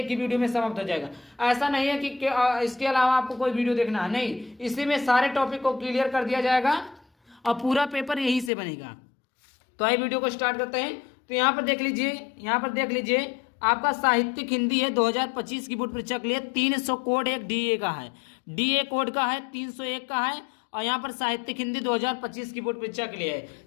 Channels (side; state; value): right; drops out; at 8.5 s